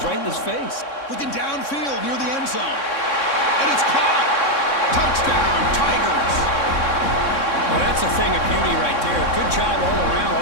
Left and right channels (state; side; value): late; right; 3.6 ms